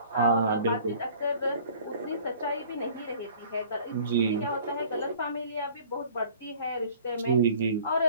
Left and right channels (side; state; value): both; inverted; correlation -0.50